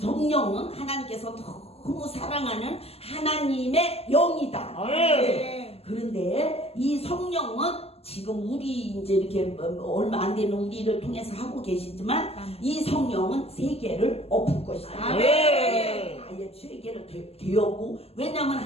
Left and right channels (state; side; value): late; right; 0.29 ms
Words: 하나님께서 너무 사랑하는 하나님의 영이다. 아멘. 그런데 이 성령은 지금 우리 이제 이렇게 얼마 안 되는 우리를 통해서 하고 계시지만 이 성령은 세계를 엎을 것이다. 아멘. 아예 세계를 되었고 왜냐하면